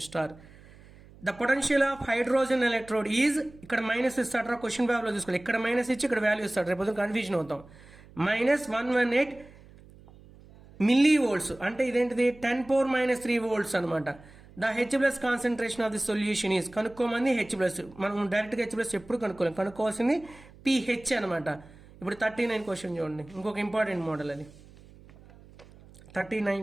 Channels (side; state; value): right; noise; hum, 23 dB below the sound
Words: star. The potential of hydrogen electrode is, ఇక్కడ మైనస్ ఇస్తాడు, క్వశ్చన్ పేపర్లో చూసుకోవాలి. ఇక్కడ మైనస్ ఇచ్చి ఇక్కడ వాల్యూ ఇస్తాడు, రేపు కన్ఫ్యూజన్ అవుతాం. -118 మిల్లీవోల్ట్స్ అంటే ఇదేంటిది? 10⁻³ volts అనమాట. The H+ concentration of the solution is, కనుక్కోమంది H+. మనం డైరెక్ట్గా H+ ఎప్పుడు కనుక్కోలేం, కనుక్కోవాల్సింది pH అనమాట. ఇప్పుడు 39 క్వశ్చన్ చూడండి, ఇంకొక ఇంపార్టెంట్ మోడల్ అది.